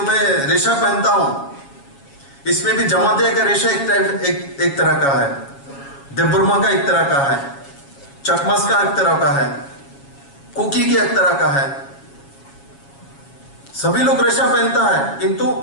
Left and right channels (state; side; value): late; right; 7.3 ms